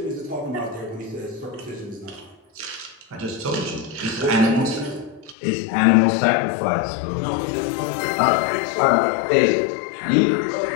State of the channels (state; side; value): drops out; right; at 5.4 s